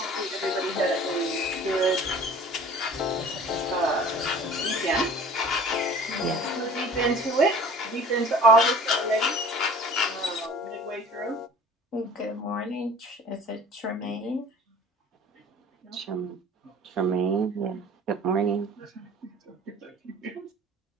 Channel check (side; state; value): both; normal; correlation 0.46